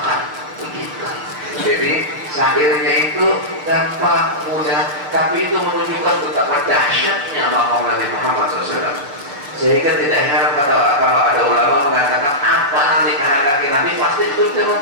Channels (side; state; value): left; late; 7.0 ms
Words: Begitu. Jadi syairnya itu gampang, mudah, tapi itu menunjukkan betapa dahsyatnya maqam Nabi Muhammad SAW. Sehingga tidak heran kalau ada ulama mengatakan apa nanti kehendaki Nabi, pasti itu Allah